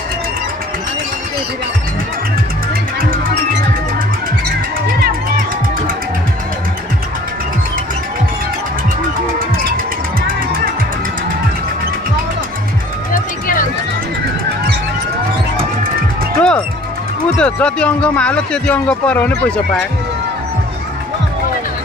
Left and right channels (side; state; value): both; normal; correlation 0.51